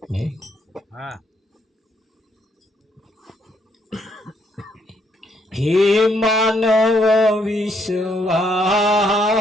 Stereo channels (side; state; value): both; normal; correlation 0.72